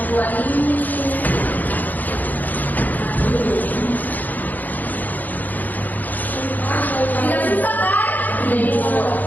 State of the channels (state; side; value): late; right; 0.083 ms